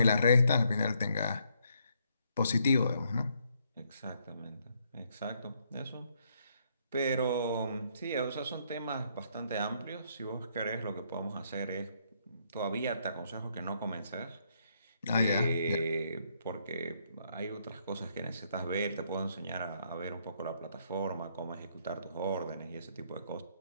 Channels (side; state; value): both; inverted; correlation -0.72